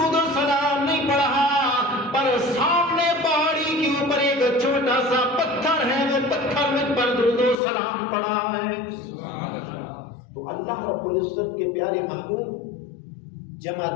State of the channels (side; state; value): right; drops out; at 7.6 s